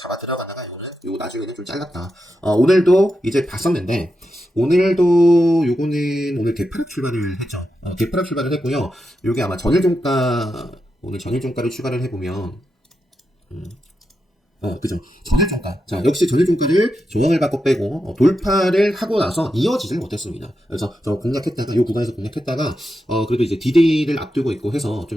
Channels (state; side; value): normal; both; correlation 0.87